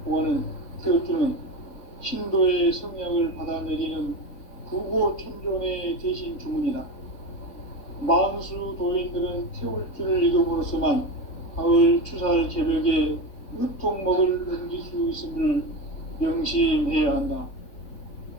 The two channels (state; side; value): late; right; 3.9 ms